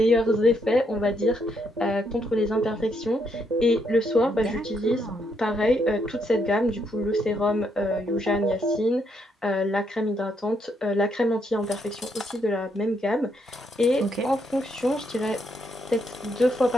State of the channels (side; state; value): both; normal; correlation 0.75